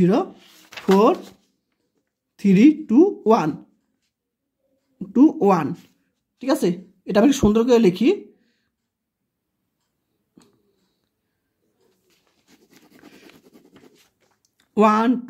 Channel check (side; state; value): both; identical; correlation 1.00